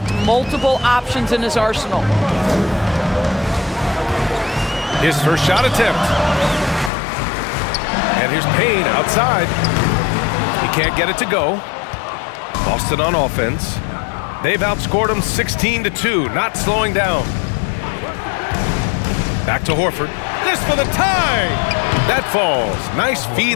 multiple options in his arsenal. His first shot attempt. And here's Payne outside. He can't get it to go. Boston on offense. They've outscored him 16-2, not slowing down. Back to Horford. This for the tie! That falls. Nice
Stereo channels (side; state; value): right; drops out; at 6.9 s